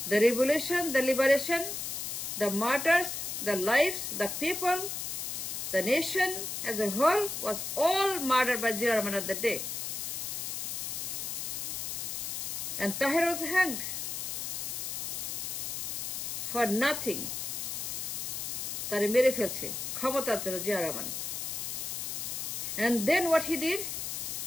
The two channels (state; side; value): noise; left; hiss, 4 dB below the sound